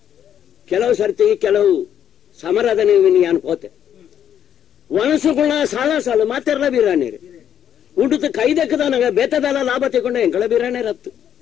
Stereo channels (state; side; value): quieter; right; 9.6 dB